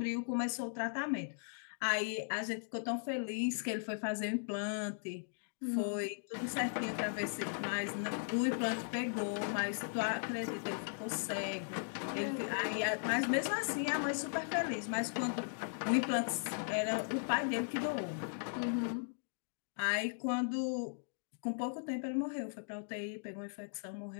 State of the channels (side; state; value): right; silent; digital silence